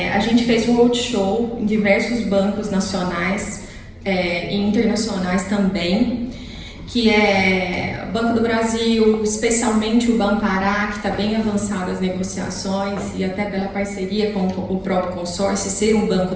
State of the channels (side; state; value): both; identical; correlation 1.00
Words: A gente fez um roadshow em diversos bancos nacionais e internacionais também, que é Banco do Brasil, especialmente o Banpará, que está bem avançado as negociações e até pela parceria com o próprio consórcio, ser um banco